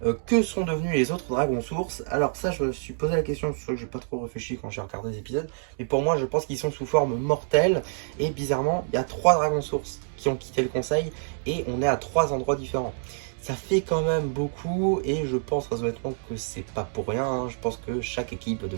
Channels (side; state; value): left; silent; digital silence